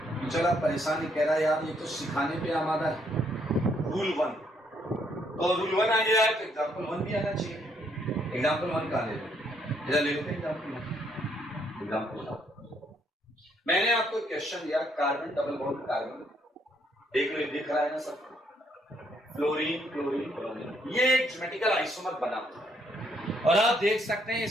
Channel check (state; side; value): normal; both; correlation 0.71